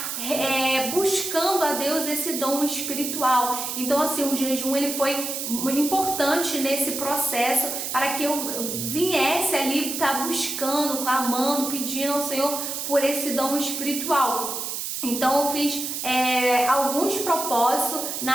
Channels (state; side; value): noise; right; hiss, 4 dB below the sound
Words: buscando a Deus esse dom espiritual. Então assim, o jejum ele foi importante nesse processo para que eu viesse ali estar buscando, clamando, pedindo ao Senhor por esse dom espiritual. Então eu fiz alguns propósitos